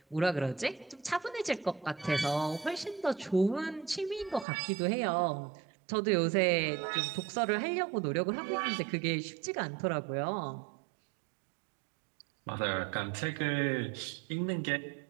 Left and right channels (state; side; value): drops out; left; at 4.5 s